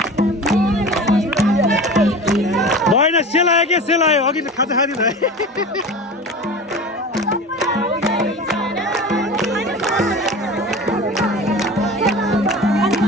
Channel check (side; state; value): both; normal; correlation 0.34